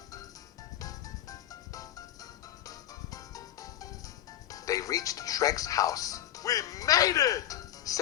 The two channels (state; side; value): quieter; right; 11.9 dB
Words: They reached Shrek's house, We made it!